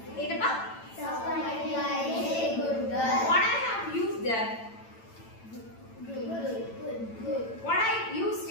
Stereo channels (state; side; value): late; right; 8.9 ms